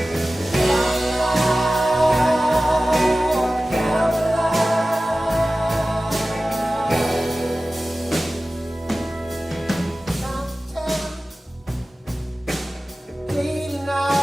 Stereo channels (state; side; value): normal; both; correlation 0.96